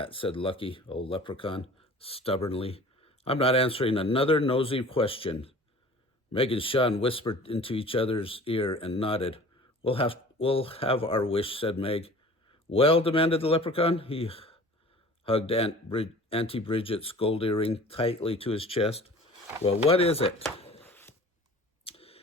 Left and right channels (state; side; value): normal; both; correlation 0.45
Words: said Lucky, old leprechaun, stubbornly. I'm not answering another nosy question. Meg and Sean whispered into each other's ear and nodded. We'll have our wish, said Meg. Well, demanded the leprechaun. He hugged Auntie Bridget's gold earring tightly to his chest. Well, what is it?